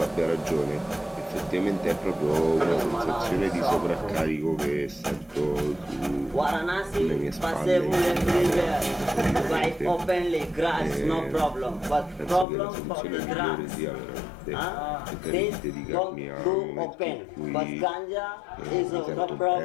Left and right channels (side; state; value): right; drops out; at 12.5 s